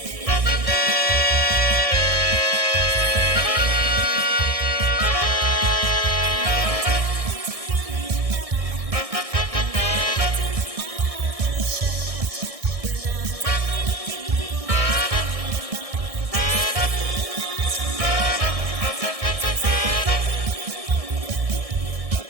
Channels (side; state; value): left; late; 1.6 ms